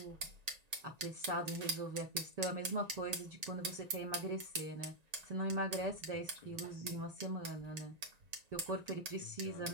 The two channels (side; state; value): left; late; 1.9 ms